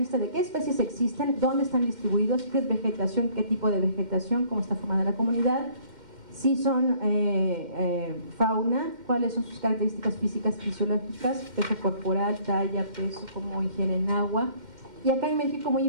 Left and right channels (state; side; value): late; left; 2.1 ms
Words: de qué especies existen, dónde están distribuidos, qué es vegetación, qué tipo de vegetación, cómo está formada la comunidad, si son fauna, cuáles son sus características físicas, fisiológicas, peso corporal, talla, peso, cómo ingieren agua. Y acá en México, muy